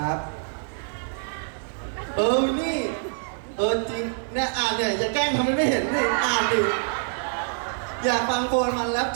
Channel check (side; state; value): left; silent; digital silence